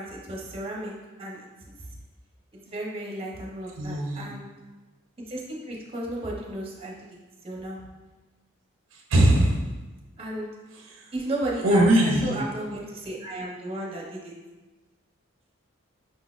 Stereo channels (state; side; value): normal; both; correlation 0.74